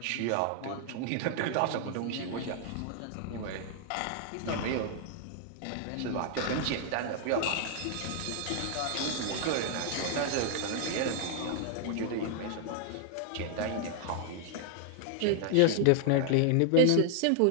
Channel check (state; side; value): different; both; correlation 0.00